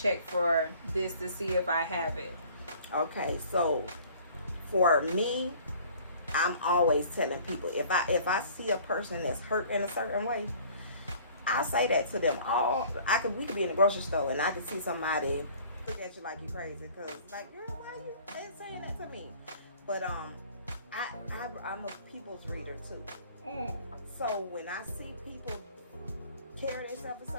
for this to see if I have it? Okay, so for me, I'm always telling people if I see a person that's hurt in a certain way, I say that to them. We could be in the grocery store and I could see somebody look at you like you crazy because like, girl, why you saying that to me? But I'm a people's reader too. So when I see people carry themselves a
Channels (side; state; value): both; inverted; correlation -0.51